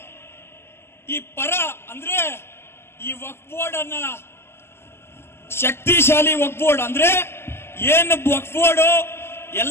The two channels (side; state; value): right; late; 0.12 ms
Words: ಈ ಪರ ಅಂದ್ರೆ ಈ ವಕ್ಫ್ ಬೋರ್ಡ್ ಅನ್ನ ಶಕ್ತಿಶಾಲಿ ವಕ್ಫ್ ಬೋರ್ಡ್ ಅಂದ್ರೆ ಏನು ವಕ್ಫ್ ಬೋರ್ಡ್